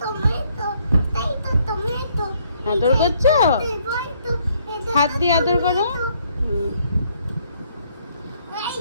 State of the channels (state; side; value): inverted; both; correlation -0.68